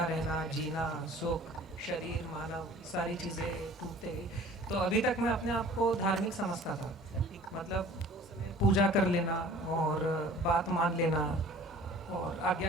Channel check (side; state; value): both; normal; correlation 0.48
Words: रहना, जीना, सुख, शरीर, मानव, सारी चीज़ें टूटते गई। तो अभी तक मैं अपने आप को धार्मिक समझता था, मतलब पूजा कर लेना और बात मान लेना और